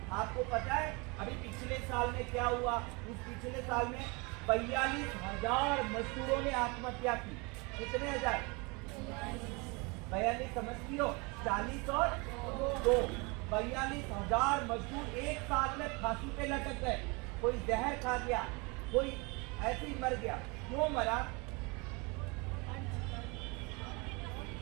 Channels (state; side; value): quieter; left; 28.6 dB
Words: आपको पता है अभी पिछले साल में क्या हुआ? इस पिछले साल में 42,000 मजदूरों ने आत्महत्या की। कितने हजार? 42 समझती हो? 40 और 2, 42,000 मजदूर एक साल में फांसी पे लटक गए। कोई जहर खा गया, कोई ऐसे ही मर गया। क्यों मरा?